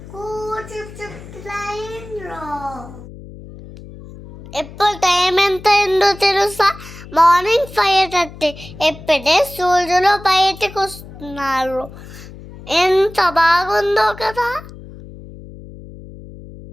ట్రైన్లో. ఇప్పుడు టైం ఎంత అయిందో తెలుసా? మార్నింగ్ 5:30. ఎప్పుడే సూర్యులు బయటకు వస్తున్నారు. ఎంత బాగుందో కదా.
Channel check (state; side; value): noise; left; hum, 16 dB below the sound